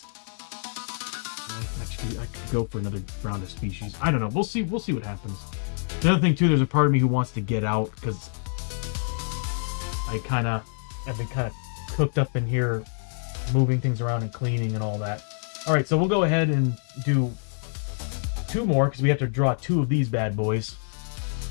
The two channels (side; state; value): right; silent; 60 dB below the other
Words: Actually, I could go for another round of Species. I don't know. We'll see what happens. The other thing, too, there's a part of me who wants to get out, because I've been kind of cooked up in here, moving things around and cleaning and all that. All right, so we'll go ahead and do 2 more, because we have to draw 2 of these bad boys.